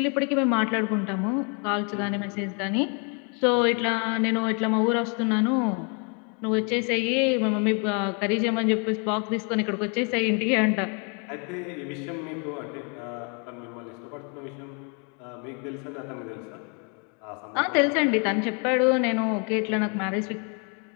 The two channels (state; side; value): quieter; right; 36.7 dB